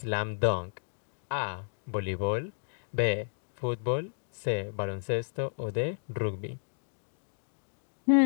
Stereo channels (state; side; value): silent; right; digital silence